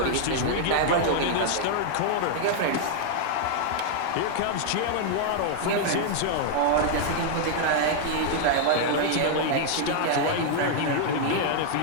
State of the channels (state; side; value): different; both; correlation 0.00